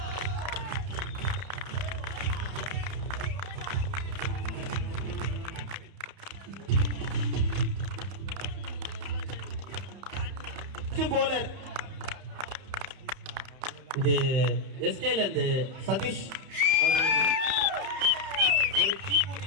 bowler. இது எஸ்கேல இருந்து சதீஷ் அவர்களுக்கு ஒரு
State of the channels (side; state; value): left; late; 31 ms